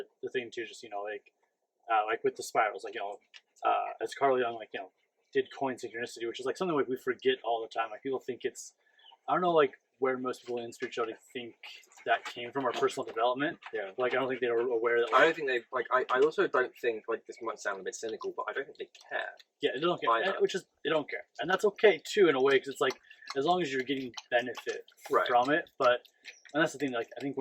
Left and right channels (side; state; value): both; identical; correlation 1.00